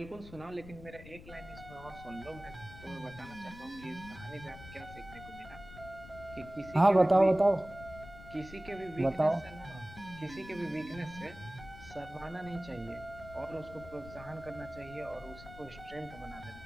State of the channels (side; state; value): left; noise; rumble, 16 dB below the sound